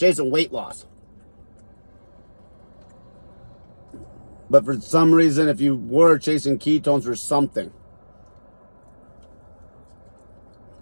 weight loss. But for some reason, if you were chasing ketones for something,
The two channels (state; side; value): inverted; both; correlation -1.00